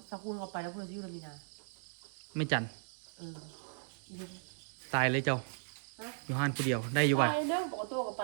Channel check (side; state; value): left; silent; digital silence